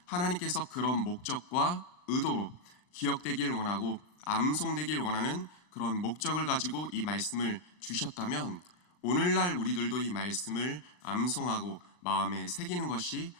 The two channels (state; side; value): late; right; 39 ms